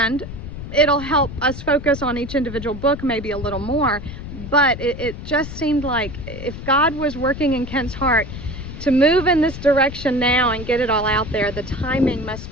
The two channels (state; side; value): noise; left; rumble, 10 dB below the sound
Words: it'll help us focus on each individual book maybe a little more, but it just seemed like if God was working in Kent's heart to move in this direction now and get it all out there, the timing